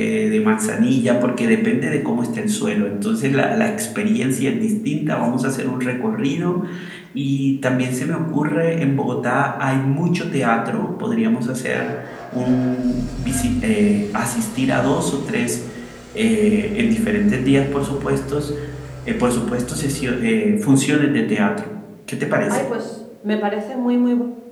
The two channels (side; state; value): both; identical; correlation 1.00